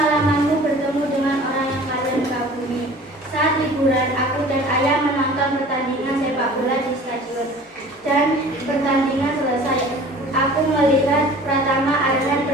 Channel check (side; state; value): both; normal; correlation 0.45